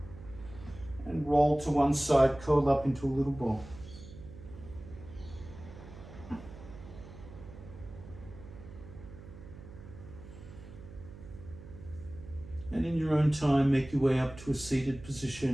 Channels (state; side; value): noise; right; hum, 15 dB below the sound